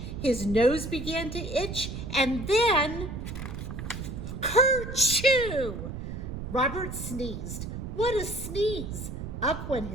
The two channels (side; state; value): right; noise; rumble, 7 dB below the sound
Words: His nose began to itch. And then, kerchoo! Robert sneezed. What a sneeze! Up went